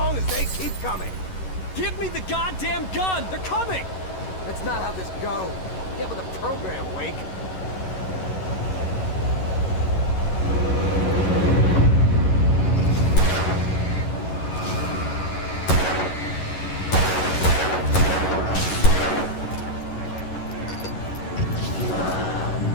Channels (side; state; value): right; late; 11 ms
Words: as they keep coming. Give me the goddamn gun! They're coming! That's not how this goes. Get with the program, Wake.